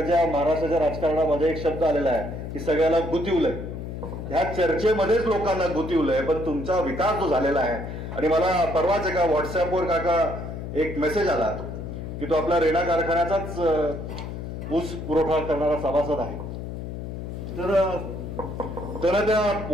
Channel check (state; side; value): noise; left; hum, 7 dB below the sound